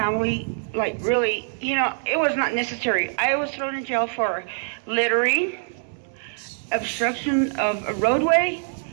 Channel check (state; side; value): silent; left; 63 dB below the other